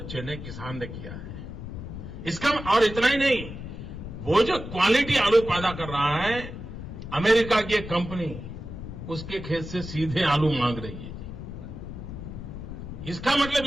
ने, किसान ने किया है। इसका और इतना ही नहीं, वो जो क्वालिटी आलू पैदा कर रहा है, अमेरिका की एक कंपनी उसके खेत से सीधे आलू मांग रही है। इसका मतलब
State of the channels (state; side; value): noise; left; rumble, 9 dB below the sound